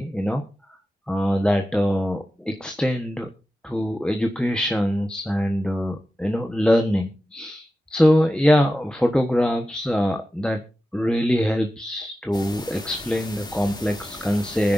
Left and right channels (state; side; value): normal; both; correlation 0.93